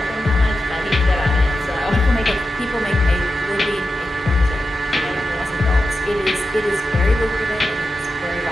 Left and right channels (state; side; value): normal; both; correlation 0.89